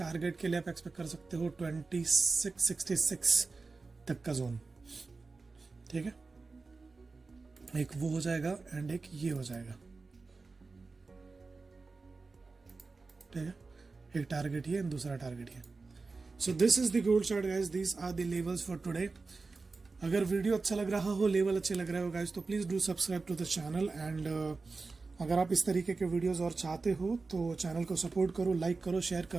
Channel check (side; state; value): left; quieter; 4.0 dB